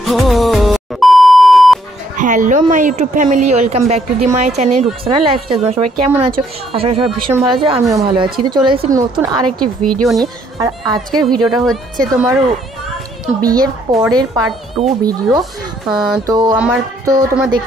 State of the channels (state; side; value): normal; both; correlation 0.68